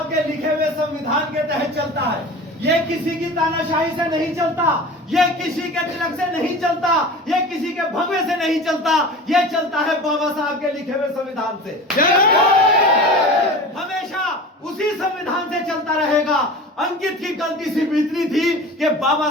के लिखे हुए संविधान के तहत चलता है। ये किसी की तानाशाही से नहीं चलता, ये किसी के तिलक से नहीं चलता, ये किसी के भगवे से नहीं चलता, ये चलता है बाबा साहब के लिखे हुए संविधान से। हमेशा उसी संविधान से चलता रहेगा। अंकित की गलती सिर्फ इतनी थी कि बाबा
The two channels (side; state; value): both; normal; correlation 0.35